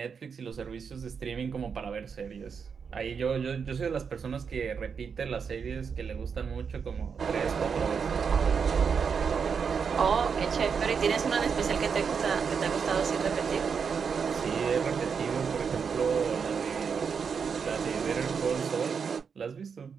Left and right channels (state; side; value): quieter; left; 6.2 dB